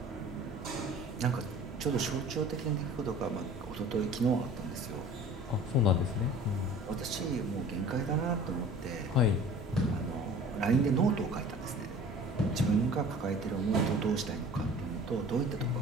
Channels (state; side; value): normal; both; correlation 0.45